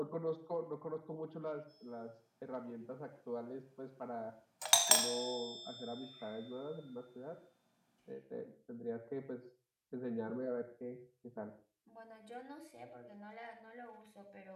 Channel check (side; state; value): both; identical; correlation 1.00